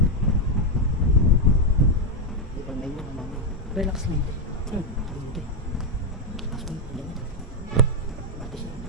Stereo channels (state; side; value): normal; both; correlation 0.04